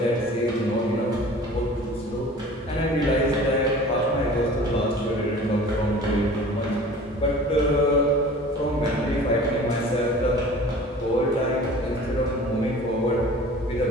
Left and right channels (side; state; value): both; normal; correlation 0.43